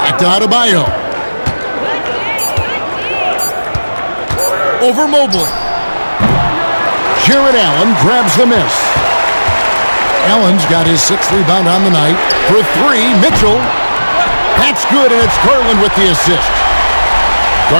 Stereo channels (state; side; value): inverted; both; correlation -1.00